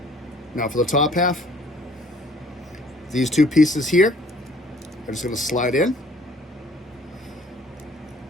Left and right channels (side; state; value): both; normal; correlation 0.57